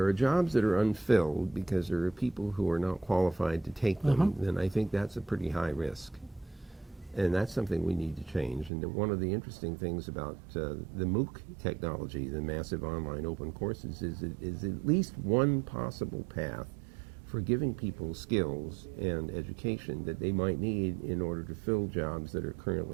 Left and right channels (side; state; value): left; drops out; at 8.7 s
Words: are jobs that are unfilled because there are people who are not qualified to take them, then I think that's a pretty high risk. And that's something we need to change. And one of the interesting things about the MOOC technology, the massive online open courses, is at least one possible path for giving people skills and education that they might need in order to fill jobs that are